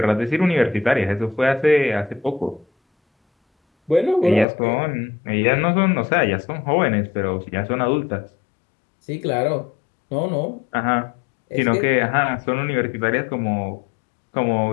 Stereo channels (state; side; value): drops out; right; at 4.5 s